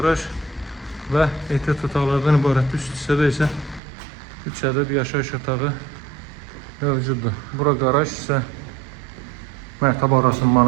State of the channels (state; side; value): drops out; left; at 3.8 s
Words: və ehtiyat otaqlardan ibarət. Üst hissədə isə 3 ədəd yaşayış otağı mövcuddur. Bura qaraj isə mərtəbə arası